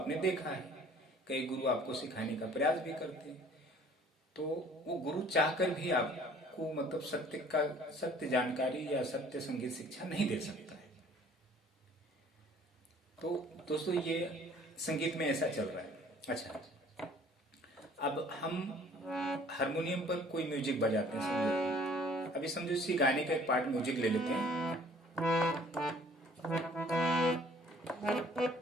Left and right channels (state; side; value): normal; both; correlation 0.54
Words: देखा है, कई गुरु आपको सिखाने का प्रयास भी करते हैं। तो वो गुरु चाहकर भी आपको मतलब सत्य जानकारी या सत्य संगीत शिक्षा नहीं दे सकता है। तो दोस्तों, ये संगीत में ऐसा चल रहा है। अच्छा, अब हम हारमोनियम पर कोई म्यूजिक बजाते हैं, समझो अभी समझो इसी गाने का एक पार्ट म्यूजिक ले लेते हैं।